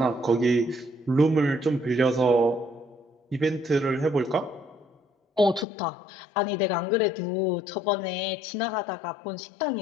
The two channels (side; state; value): right; drops out; at 5.7 s